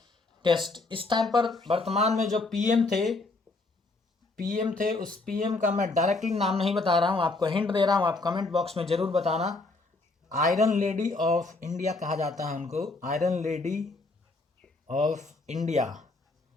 टेस्ट। इस टाइम पर वर्तमान में जो पीएम थे, उस पीएम का मैं डायरेक्टली नाम नहीं बता रहा हूँ, आपको हिंट दे रहा हूँ, आप कमेंट बॉक्स में ज़रूर बताना। आयरन लेडी ऑफ इंडिया कहा जाता है उनको, आयरन लेडी ऑफ इंडिया।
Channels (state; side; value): quieter; right; 3.4 dB